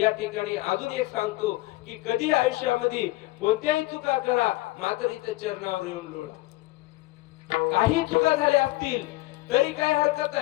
ठिकाणी अजून एक सांगतो की कधी आयुष्यामध्ये कोणत्याही चुका करा मात्र इथे चरणावर येऊन लोळा. काही चुका झाल्या असतील तरी काय हरकत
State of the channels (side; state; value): right; quieter; 19.7 dB